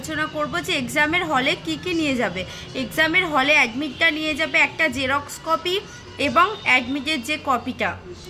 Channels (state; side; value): identical; both; correlation 1.00